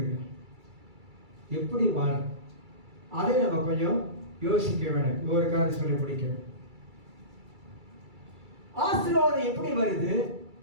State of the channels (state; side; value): late; left; 2.3 ms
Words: எப்படி வாழ, அதை நம்ம கொஞ்சம் யோசிக்க வேண்டும். ஒரு காரணம் சொல்லி முடிக்கிறேன். ஆசீர்வாதம் எப்படி வருது,